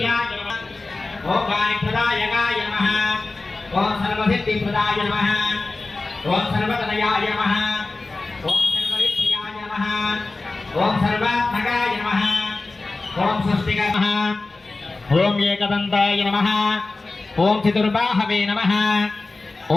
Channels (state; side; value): quieter; right; 3.4 dB